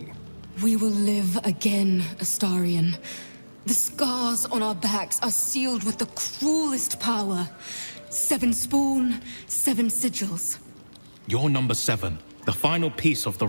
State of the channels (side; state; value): both; inverted; correlation -1.00